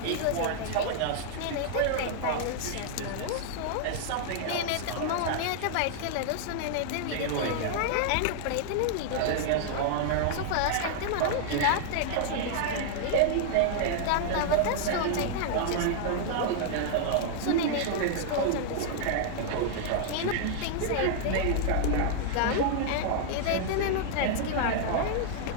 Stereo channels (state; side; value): different; both; correlation 0.00